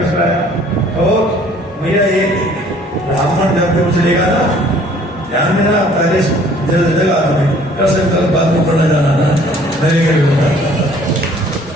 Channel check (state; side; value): normal; both; correlation 0.56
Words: कराया। तो भैया ये ब्राह्मण जब भी कुछ लेगा ना, ध्यान में ना पहले जगह तुम्हें कर सकता बात में पढ़ना जाना ना मेरे के